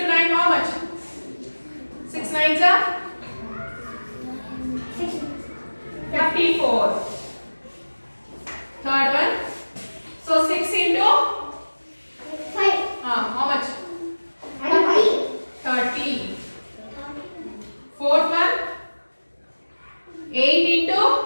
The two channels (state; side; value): inverted; both; correlation -1.00